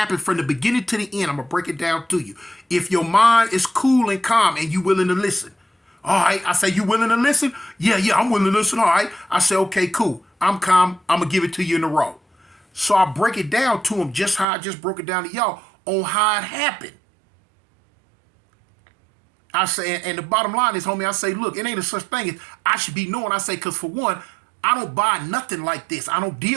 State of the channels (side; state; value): left; drops out; at 14.5 s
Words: from the beginning to the end. I'm going to break it down to you. If your mind is cool and calm and you willing to listen. All right. I say, you willing to listen? Yeah, I'm willing to listen. All right. I say, okay, cool. I'm calm. I'm going to give it to you in a row. So I break it down to him just how I just broke it down to y'all on how it happened. I say, and the bottom line is, homie, I say, look, it ain't a such thing as I should be knowing. I say, because for one, I don't buy nothing like this. I don't